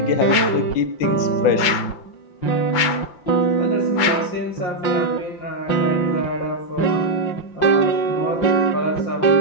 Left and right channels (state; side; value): late; right; 6.0 ms